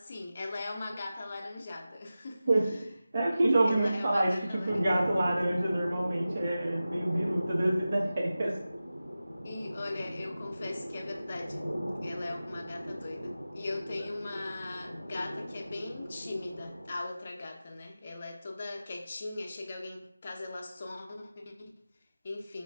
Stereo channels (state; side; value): inverted; both; correlation -0.94